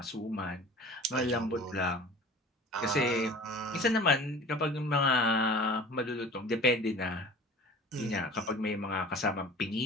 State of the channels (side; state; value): both; normal; correlation 0.42